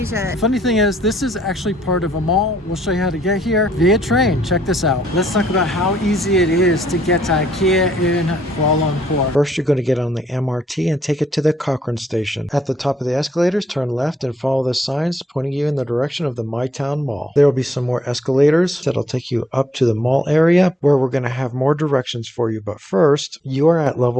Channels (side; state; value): both; normal; correlation 0.71